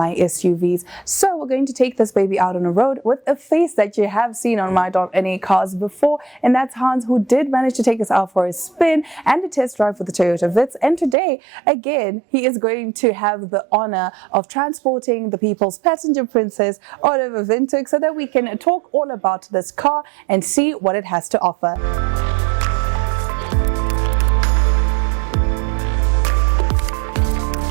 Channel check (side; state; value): left; drops out; at 11.2 s